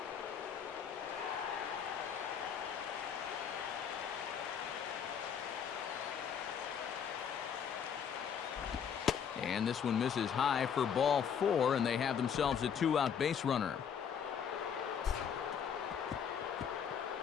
And this one misses high for ball 4, and they have themselves a 2-out base runner.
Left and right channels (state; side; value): quieter; right; 7.7 dB